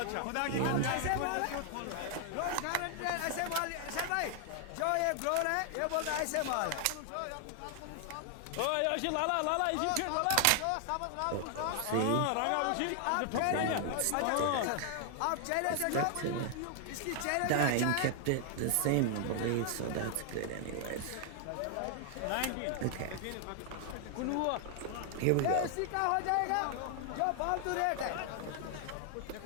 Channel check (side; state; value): both; different; correlation 0.00